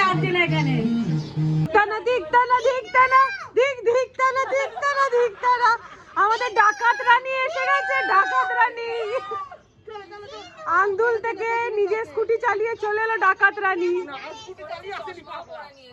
লাগছে না এখানে। আমাদের ডাকাত রানী এসে গেছে, ডাকাত রানী আন্দুল থেকে নিজে স্কুটি চালিয়ে চলে এলো ডাকাত রানী।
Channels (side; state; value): both; identical; correlation 1.00